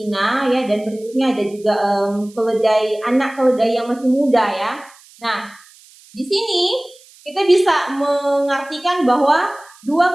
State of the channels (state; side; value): noise; right; hiss, 25 dB below the sound